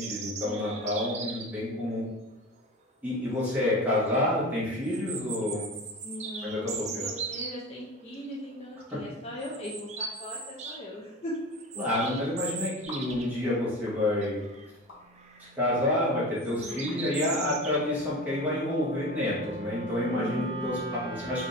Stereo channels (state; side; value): normal; both; correlation 0.32